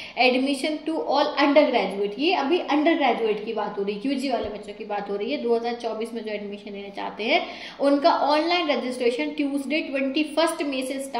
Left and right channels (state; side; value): identical; both; correlation 1.00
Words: admission to all undergraduate. ये अभी अंडर ग्रेजुएट की बात हो रही है, UG वाले बच्चों की बात हो रही है। 2024 में जो एडमिशन लेना चाहते हैं उनका ऑनलाइन रजिस्ट्रेशन ट्यूसडे 21 मई से